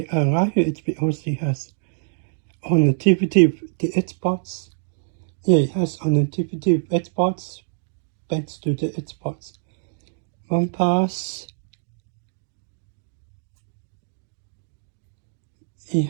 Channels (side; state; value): left; silent; digital silence